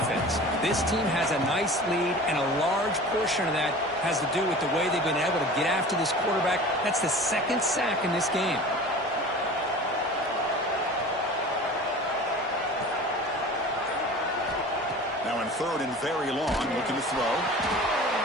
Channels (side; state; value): both; normal; correlation 0.39